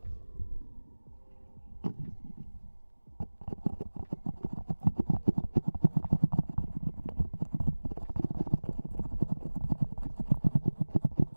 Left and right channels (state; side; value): inverted; both; correlation -1.00